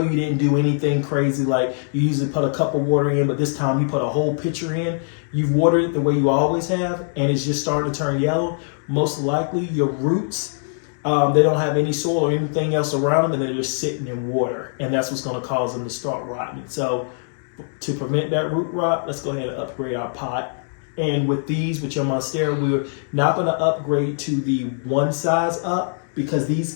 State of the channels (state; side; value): silent; right; digital silence